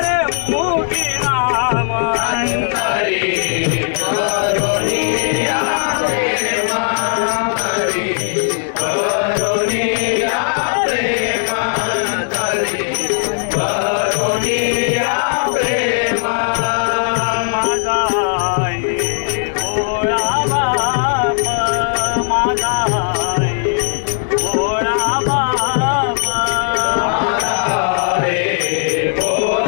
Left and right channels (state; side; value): silent; right; 68 dB below the other